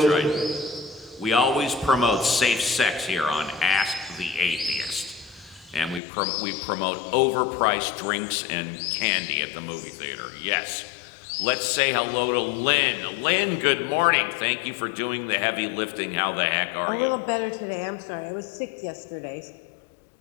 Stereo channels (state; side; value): drops out; right; at 6.0 s